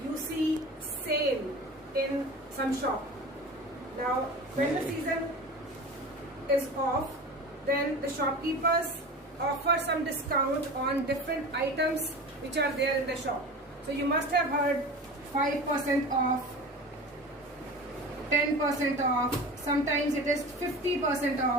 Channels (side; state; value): both; normal; correlation 0.34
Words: you see sale in some shop. Now, when the season is off, then the shopkeepers offer some discount on different items which are there in the shop. So you must have heard 5% off, 10% off, sometimes it is 50%